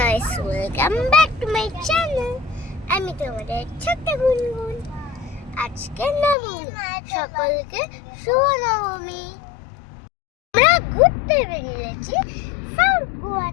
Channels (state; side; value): drops out; right; at 6.4 s